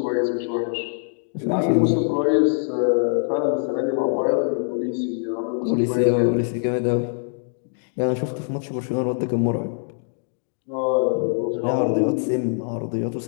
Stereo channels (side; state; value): right; silent; 63 dB below the other